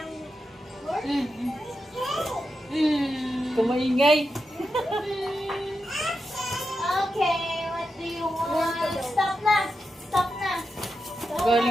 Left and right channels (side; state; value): both; normal; correlation 0.88